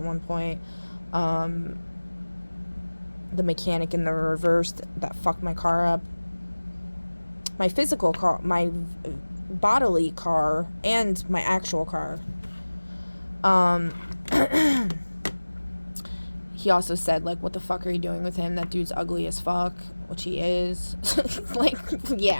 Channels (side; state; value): both; inverted; correlation -1.00